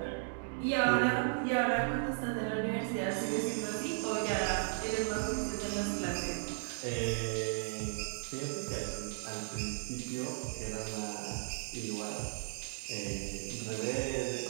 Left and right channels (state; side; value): silent; left; digital silence